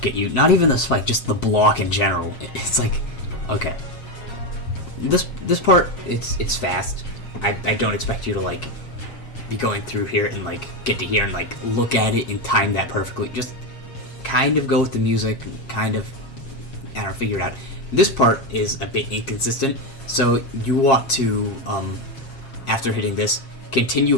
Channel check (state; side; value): late; right; 7.4 ms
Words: get you, not even the spike, just the block in general. It's like, okay. This part, it's fast. I don't expect you to, like, be going through here and, like, get to here and, like, look at it and time that perfectly. Just kind of go with the music, kind of, I don't know, figure it out. This part is a bit inconsistent, so you want to, after hitting this, continue